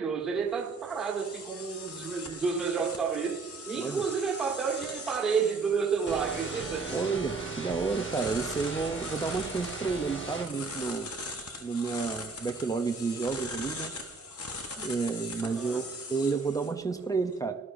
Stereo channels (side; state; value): left; quieter; 4.3 dB